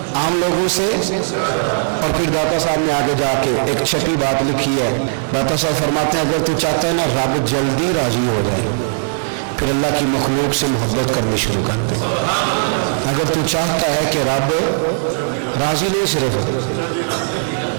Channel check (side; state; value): left; silent; 56 dB below the other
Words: عام لوگوں سے. اور پھر داتا صاحب نے آگے جا کے ایک چھٹی بات لکھی ہے. داتا صاحب فرماتے ہیں اگر تو چاہتا ہے نا رب جلدی راضی ہو جائے, پھر اللہ کی مخلوق سے محبت کرنی شروع کر دے. اگر تو چاہتا ہے کہ رب راضی نہیں صرف